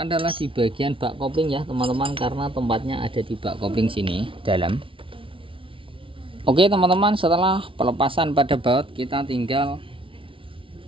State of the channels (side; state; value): left; late; 0.25 ms